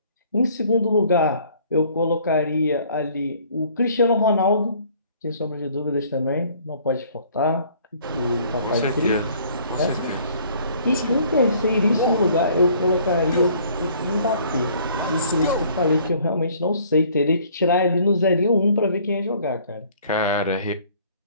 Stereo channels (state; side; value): inverted; both; correlation -0.57